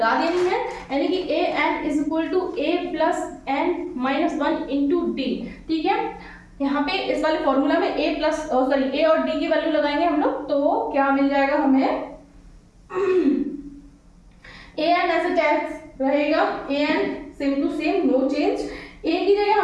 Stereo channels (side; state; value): both; identical; correlation 1.00